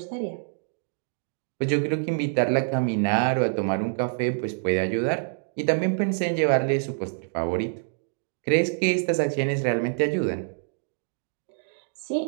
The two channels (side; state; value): left; silent; digital silence